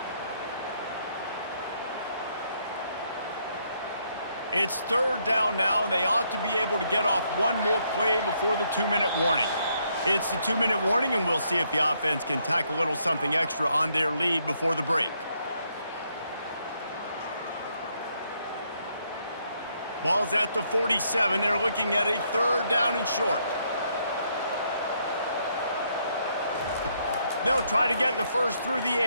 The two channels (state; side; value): inverted; both; correlation -0.73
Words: It's third down now, and they ought to be able to get off one more play before the 2-minute warning. It's the 2-minute warning, and we'll see if the offense can tack a little something extra on their lead before the break. Ball's at the 47. They're looking at a third down and short. They'll try to get the first through the